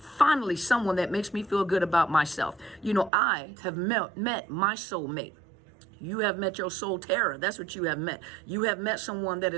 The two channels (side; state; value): left; drops out; at 3.1 s